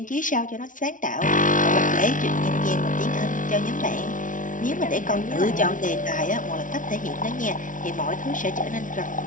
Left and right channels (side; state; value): right; late; 0.38 ms